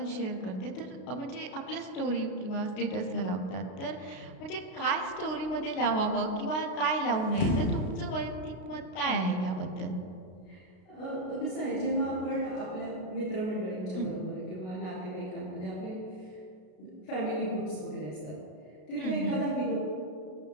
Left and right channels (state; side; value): late; right; 33 ms